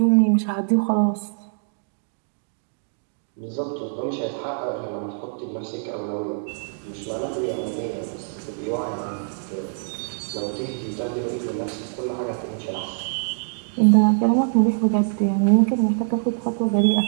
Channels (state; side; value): silent; left; digital silence